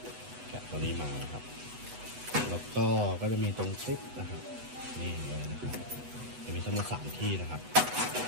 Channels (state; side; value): late; left; 8.1 ms